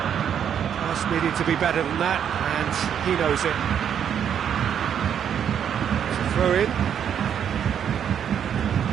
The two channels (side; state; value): left; quieter; 8.6 dB